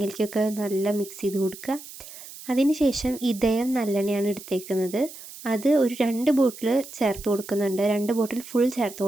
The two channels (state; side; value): noise; right; hiss, 15 dB below the sound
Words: നല്ല മിക്സ് ചെയ്ത് കൊടുക്കുക. അതിന് ശേഷം ഇതയം നല്ലെണ്ണയാണ് എടുത്തേക്കുന്നത്, അത് ഒരു 2 ബോട്ടിൽ ചേർത്ത് കൊടുക്കുന്നുണ്ട്, 2 ബോട്ടിൽ ഫുൾ ചേർത്ത്